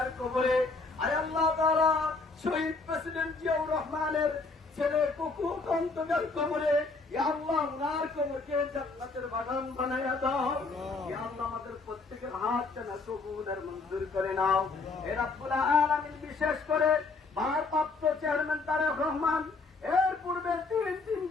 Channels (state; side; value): quieter; right; 3.9 dB